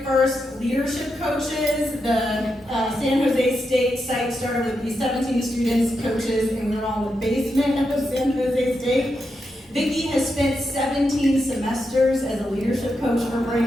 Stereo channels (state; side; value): normal; both; correlation 0.85